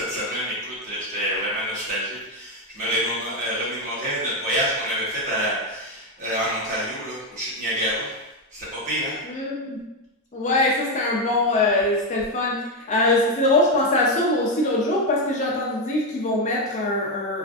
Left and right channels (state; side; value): normal; both; correlation 0.07